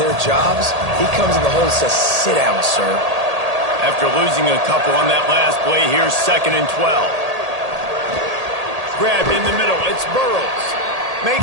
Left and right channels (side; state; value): left; late; 1.8 ms